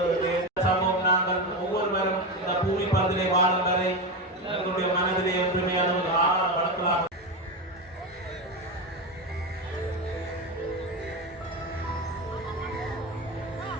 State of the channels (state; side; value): normal; both; correlation 0.17